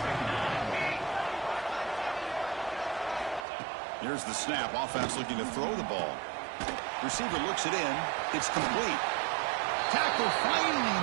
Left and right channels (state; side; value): drops out; left; at 3.5 s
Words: Here's the snap. Offense looking to throw the ball. Receiver looks it in. It's complete. Tackle finally